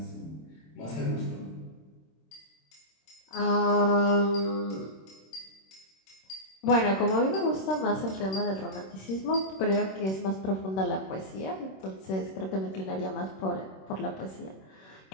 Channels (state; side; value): late; right; 26 ms